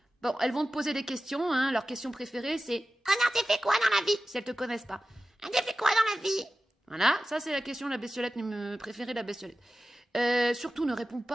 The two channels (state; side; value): normal; both; correlation 0.94